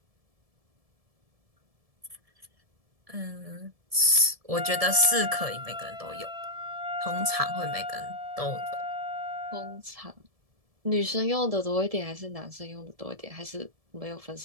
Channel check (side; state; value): left; late; 1.7 ms